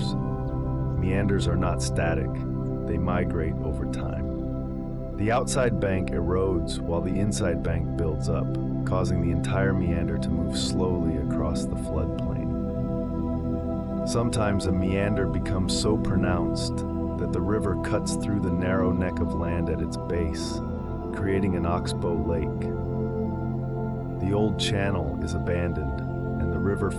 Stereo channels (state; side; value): identical; both; correlation 1.00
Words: Meanders are not static, they migrate over time. The outside bank erodes while the inside bank builds up, causing the entire meander to move slowly across the floodplain. Sometimes a meander becomes so pronounced that the river cuts through the narrow neck of land at its base, creating an oxbow lake. The old channel is abandoned, and the river